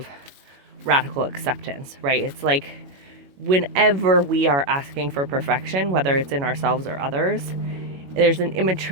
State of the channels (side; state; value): left; late; 21 ms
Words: radical acceptance, right? It's like whenever we are asking for perfection, whether it's in ourselves or others, there's an